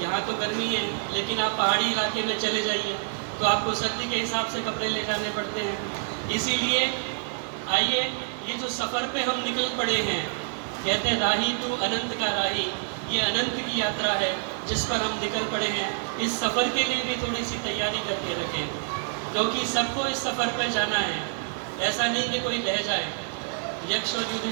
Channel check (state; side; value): silent; left; digital silence